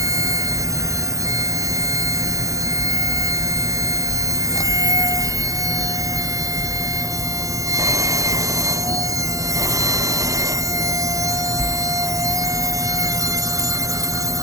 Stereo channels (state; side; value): late; left; 0.16 ms